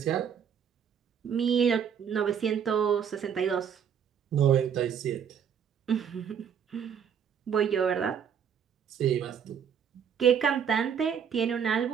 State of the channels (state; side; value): quieter; left; 7.9 dB